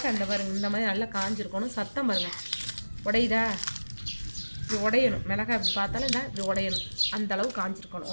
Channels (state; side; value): inverted; both; correlation -1.00